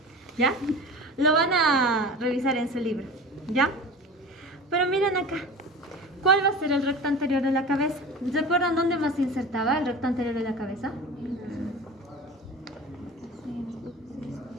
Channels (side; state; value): both; normal; correlation 0.35